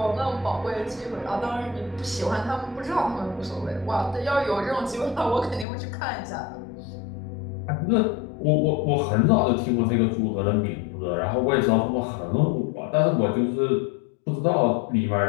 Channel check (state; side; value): drops out; right; at 5.7 s